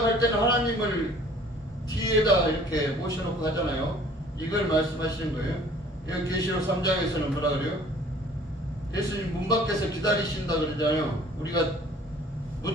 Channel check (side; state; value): both; normal; correlation 0.53